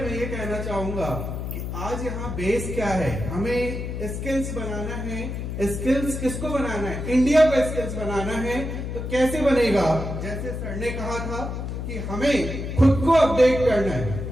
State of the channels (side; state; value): left; noise; hum, 5 dB below the sound